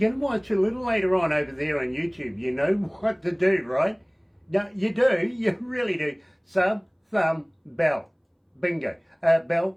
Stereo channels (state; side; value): identical; both; correlation 1.00